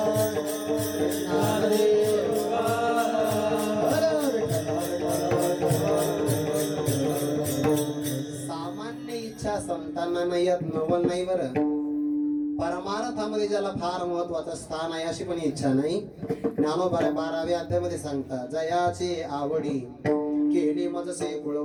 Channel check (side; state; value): both; identical; correlation 1.00